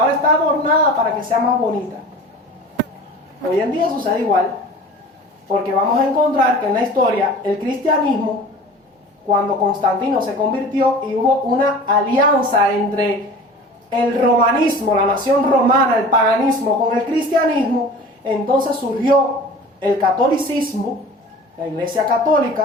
está adornada para que sea más bonita. Hoy en día sucede igual, porque vamos a encontrar que en la historia el cristianismo, cuando Constantino se convirtió y hubo una alianza entre el romanismo, la nación romana, el paganismo con el cristianismo, entonces surgió el catolicismo, la Iglesia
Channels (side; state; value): both; normal; correlation 0.40